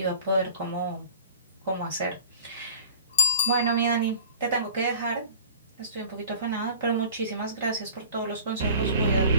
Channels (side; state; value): both; inverted; correlation -0.44